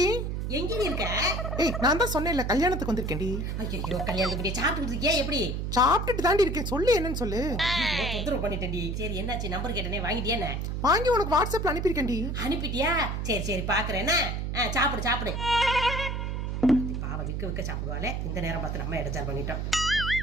எங்கடி இருக்க? ஏய் நான் தான் சொன்னேன்ல கல்யாணத்துக்கு வந்திருக்கேன்டி. ஐயோ கல்யாணத்துக்கு சாப்பிட்டு இருக்கியா? எப்படி சாப்பிட்டுட்டு தாண்டி இருக்கேன். சொல்லு என்னன்னு சொல்லு. தொந்தரவு பண்ணிட்டேன்டி. சரி என்னாச்சு? நம்பர் கேட்டனே வாங்கிட்டியா? என்ன வாங்கி உனக்கு வாட்ஸ்அப்ல அனுப்பியிருக்கேன்டி. அனுப்பிட்டியா? சரி சரி பாக்குறேன். சாப்பிடு சாப்பிடு. பாவ விக்க விக்க சாப்பிடுவாளே. இந்த நேரம் பார்த்து நம்ம எடுத்தார் பண்ணிட்டோம்.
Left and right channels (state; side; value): noise; right; hum, 2 dB below the sound